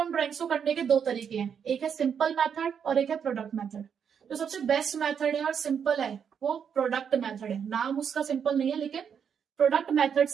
ड्राइंग्स को करने के दो तरीके हैं, एक है सिंपल मेथड और एक है प्रोडक्ट मेथड। जो सबसे बेस्ट मेथड है और सिंपल है वो प्रोडक्ट मेथड है। नाम उसका सिंपल नहीं है, लेकिन प्रोडक्ट मेथड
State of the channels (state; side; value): quieter; left; 7.5 dB